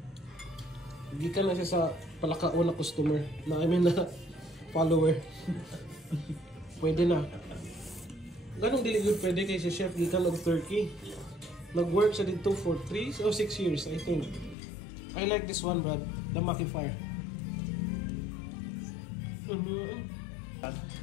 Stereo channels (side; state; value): right; drops out; at 14.6 s